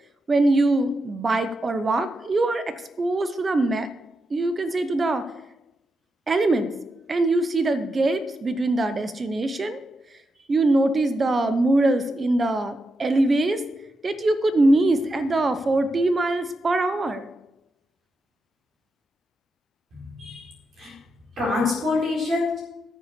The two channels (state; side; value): normal; both; correlation 0.86